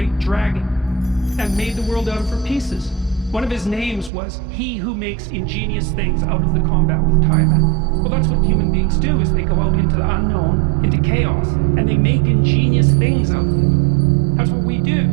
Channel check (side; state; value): left; drops out; at 4.1 s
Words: dragon, and made the world out of her pieces. One of his names was he who makes ingenious things out of the combat with Tiamat. Well, that's what human beings do, is they go out into the unknown, into chaos, and they make ingenious things out of it. That's what we do.